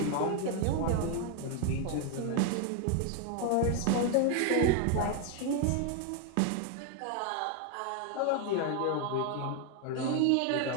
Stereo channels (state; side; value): different; both; correlation 0.01